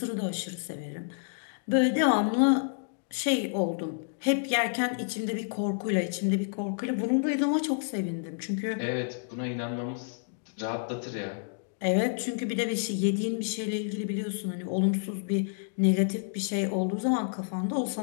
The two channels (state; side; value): silent; right; digital silence